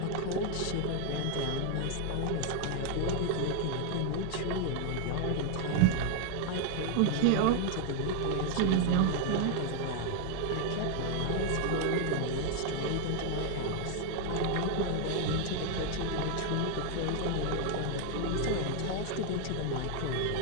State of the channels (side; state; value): both; different; correlation 0.01